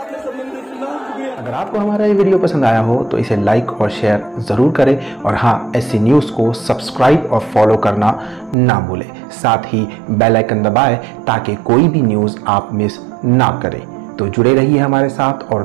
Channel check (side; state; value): left; drops out; at 8.6 s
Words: संबंधित सुना। अगर आपको हमारा ये वीडियो पसंद आया हो तो इसे लाइक और शेयर ज़रूर करें, और हाँ, SC न्यूज़ को सब्सक्राइब और फॉलो करना ना भूलें। साथ ही बेल आइकन दबाएं ताकि कोई भी न्यूज़ आप मिस ना करें। तो जुड़े रहिए हमारे साथ और